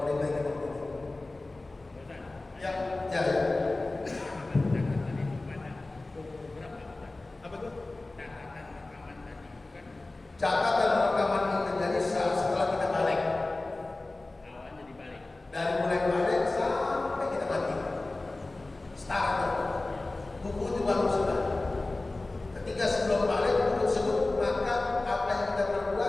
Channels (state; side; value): quieter; right; 3.0 dB